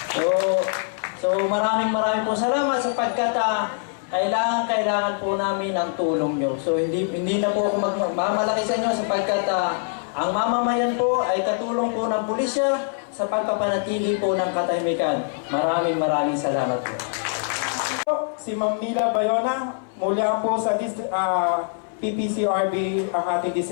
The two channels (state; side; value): silent; right; 61 dB below the other